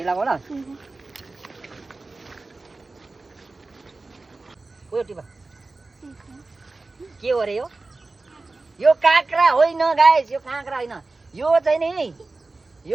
लगाऊ ल। उयो टिपा के हो रे यो काँक्रा होइन गाइज, यो काँक्रा होइन। यो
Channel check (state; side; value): quieter; left; 3.5 dB